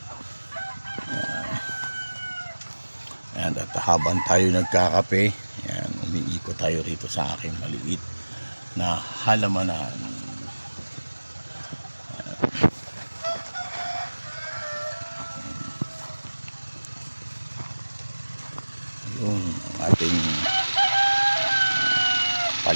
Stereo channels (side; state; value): both; inverted; correlation -1.00